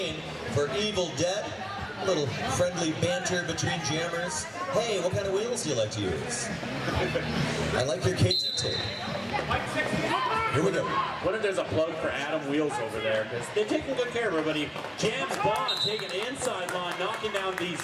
for Evil Dead. A little friendly banter between jammers. Hey, what kind of wheels do you like to use? I like your KT tape. Here we go. What if there's a plug for Adam Wheels over there? Because they're taking good care of everybody. James Bond taking the inside line, knocking down the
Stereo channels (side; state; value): both; identical; correlation 1.00